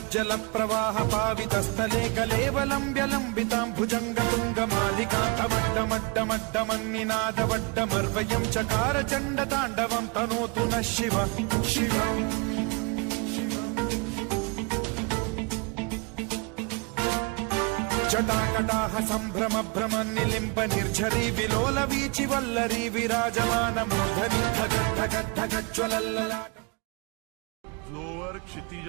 प्रवाह पावितस्थले कलेवलम्ब्य लम्बितां भुजङ्ग तुङ्ग मालिकान्तमड्डमड्डमड्डमन्निनादवड्डमर्वयं चकार चण्ड ताण्डवं तनोतु नः शिव शिवम् जटाकटाह सम्भ्रम भ्रम निलिम्ब निर्झरी विलोल वीचि वल्लरी विराजमान मूर्धनि धगद्धगद्धगज्ज्वलल्ललाट जोवर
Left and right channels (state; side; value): quieter; left; 30.8 dB